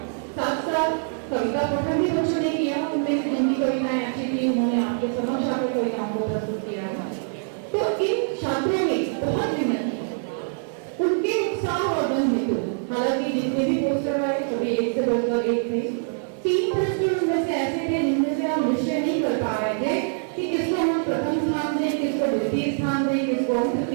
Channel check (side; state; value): left; silent; 62 dB below the other